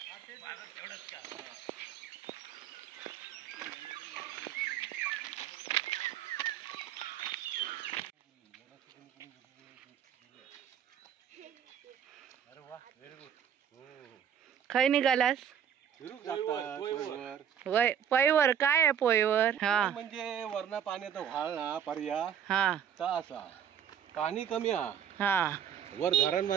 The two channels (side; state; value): left; quieter; 8.9 dB